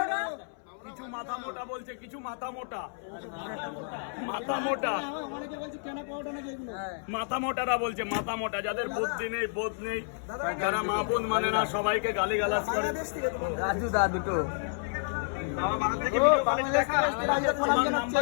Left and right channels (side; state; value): right; silent; 58 dB below the other